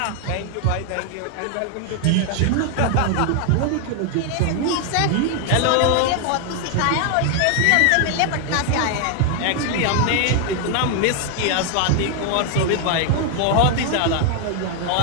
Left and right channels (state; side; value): different; both; correlation 0.00